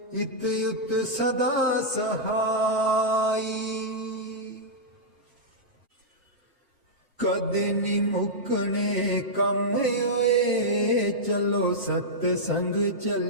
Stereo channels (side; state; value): both; normal; correlation -0.10